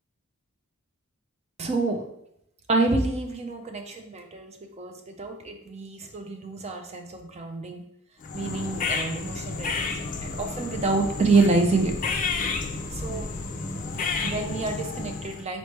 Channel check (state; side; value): normal; both; correlation 0.50